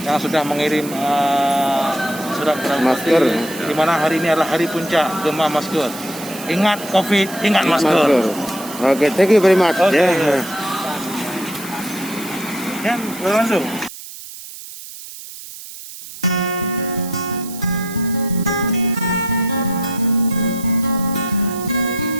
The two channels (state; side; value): noise; right; hiss, 14 dB below the sound